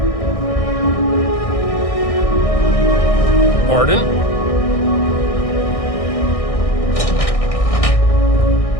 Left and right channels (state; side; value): late; right; 1.6 ms